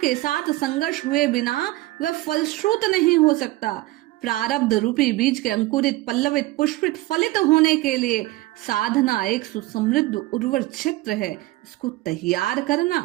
साथ संघर्ष हुए बिना वह फलश्रुत नहीं हो सकता। प्रारब्ध रूपी बीज के अंकुरित, पल्लवित, पुष्पित, फलित होने के लिए साधना एक सुसमृद्ध उर्वर क्षेत्र है। इसको तैयार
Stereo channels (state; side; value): quieter; left; 18.6 dB